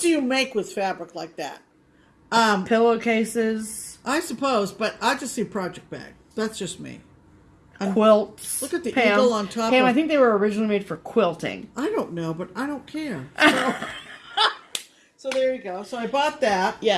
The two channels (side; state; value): both; identical; correlation 1.00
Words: you make with fabric like that? Pillowcases. I suppose, but I just see project bag. That's just me. Quilts. Look at the Pam, eagle on top. Pam, I think they were originally made for quilting. I don't know, but I don't care. So, so there you go. So I bought that.